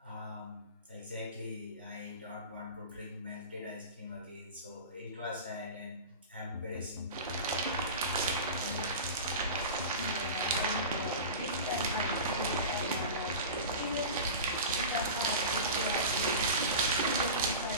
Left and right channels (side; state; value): both; inverted; correlation -0.30